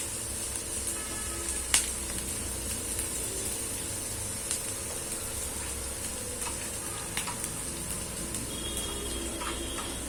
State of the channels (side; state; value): both; identical; correlation 1.00